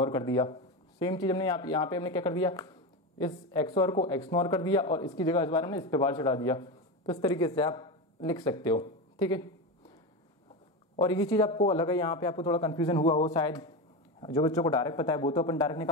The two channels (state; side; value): normal; both; correlation 0.18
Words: कर दिया। सेम चीज हमने यहाँ पे हमने क्या कर दिया, इस एक्सोर को एक्सनोर कर दिया और इसकी जगह इस बार हमने इस पे बार चढ़ा दिया। तो इस तरीके से आप लिख सकते हो, ठीक है। और ये चीज़ आपको अलग है, यहाँ पे आपको थोड़ा कंफ्यूजन हुआ हो शायद, जो बच्चों को डायरेक्ट पता है वो तो अपन डायरेक्ट